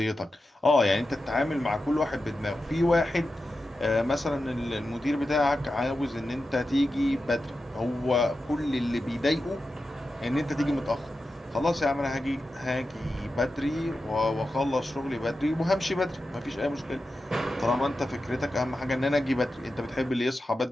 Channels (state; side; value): normal; both; correlation 0.91